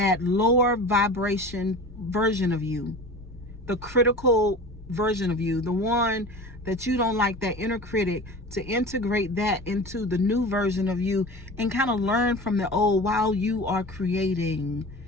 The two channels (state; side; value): normal; both; correlation 0.35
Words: lower vibration version of you, the critical version of you, the one that you don't like, that inner critic, to integrate that into the new version of you and kind of learn from the old while you are creating